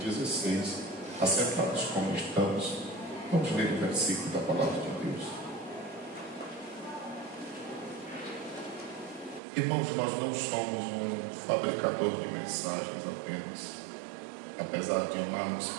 16. Assentados como estamos, vamos ler o versículo da palavra de Deus. Irmãos, nós não somos um fabricador de mensagens apenas, apesar de amarmos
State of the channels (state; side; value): drops out; left; at 9.4 s